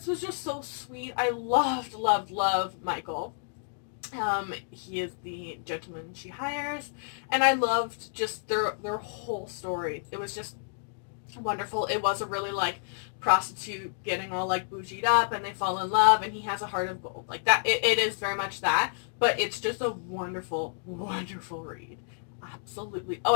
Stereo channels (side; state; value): right; silent; digital silence